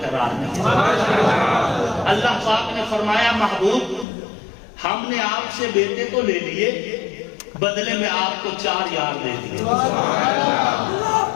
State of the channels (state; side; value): drops out; right; at 4.0 s